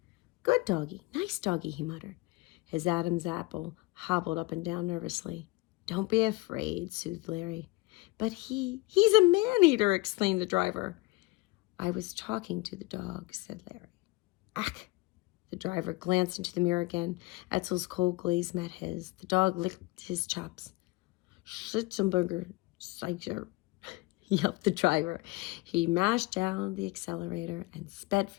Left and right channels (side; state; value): right; quieter; 21.9 dB